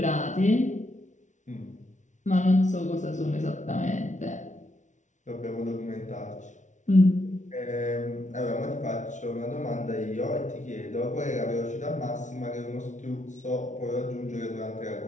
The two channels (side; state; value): right; late; 0.36 ms